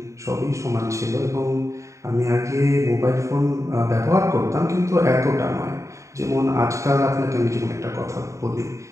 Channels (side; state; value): left; late; 0.15 ms